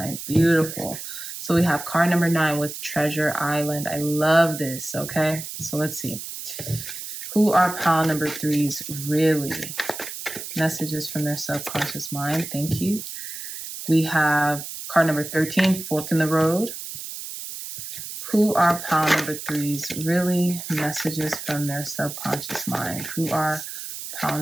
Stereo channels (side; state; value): right; noise; hiss, 9 dB below the sound